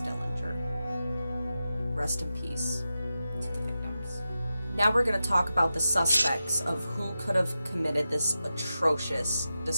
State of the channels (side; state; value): both; inverted; correlation -0.91